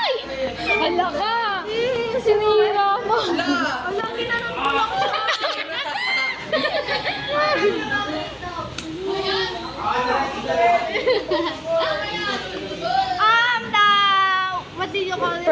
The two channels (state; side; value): identical; both; correlation 1.00